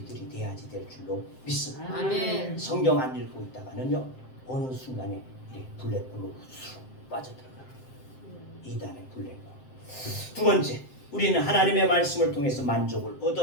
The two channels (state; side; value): late; right; 7.7 ms